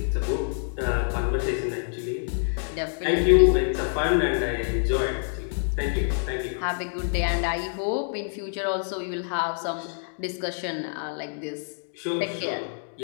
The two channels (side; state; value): right; silent; digital silence